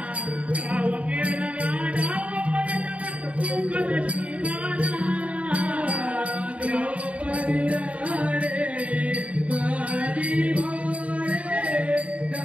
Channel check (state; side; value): late; left; 0.066 ms